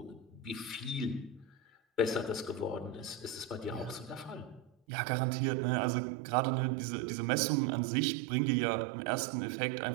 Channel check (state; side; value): drops out; left; at 4.7 s